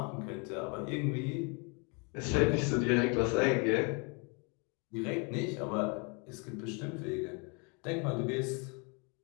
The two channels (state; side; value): quieter; right; 33.8 dB